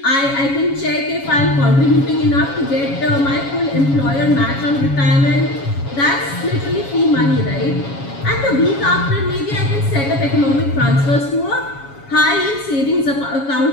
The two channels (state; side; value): late; right; 7.2 ms